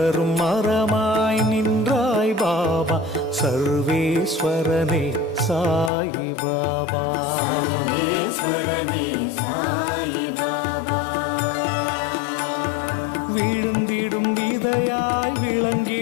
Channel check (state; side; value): drops out; right; at 5.9 s